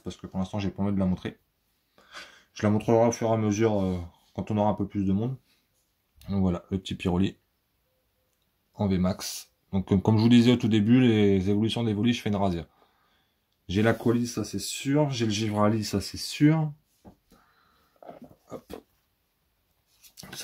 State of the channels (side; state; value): both; identical; correlation 1.00